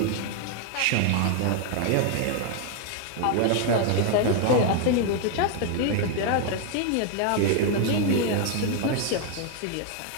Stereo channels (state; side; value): different; both; correlation 0.00